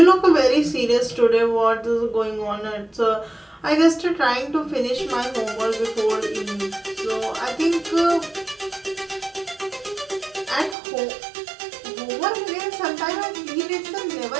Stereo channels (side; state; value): left; drops out; at 10.8 s